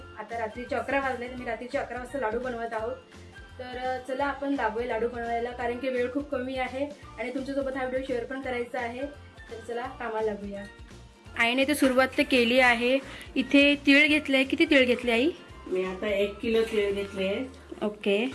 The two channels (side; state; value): both; identical; correlation 1.00